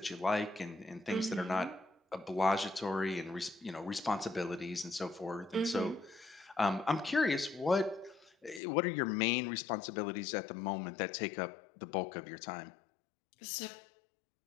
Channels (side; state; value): right; drops out; at 8.6 s